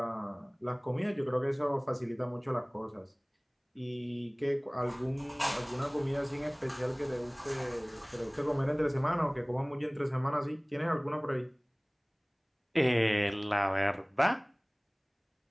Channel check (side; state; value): both; identical; correlation 1.00